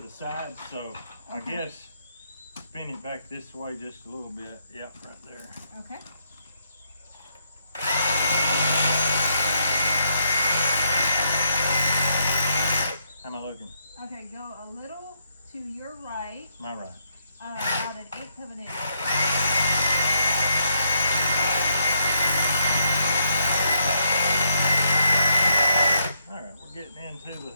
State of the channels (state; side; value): inverted; both; correlation -0.75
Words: the side, so I guess spin it back this way just a little bit. Yep, right there. Okay. How am I looking? Okay, go a little to your right. My right. About an eighth of an inch. All right, we're getting into